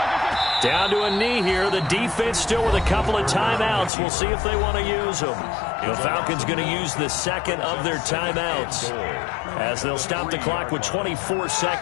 Down to a knee here. The defense still with a couple of timeouts. We'll see if they want to use them. The Falcons going to use the 2nd of their timeouts as they'll stop the clock with 24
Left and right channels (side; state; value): right; drops out; at 3.9 s